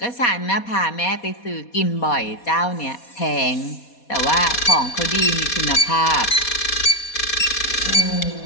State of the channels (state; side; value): late; right; 4.2 ms